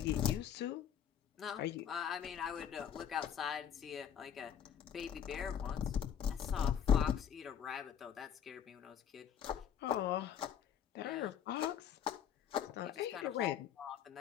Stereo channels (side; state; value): right; quieter; 8.8 dB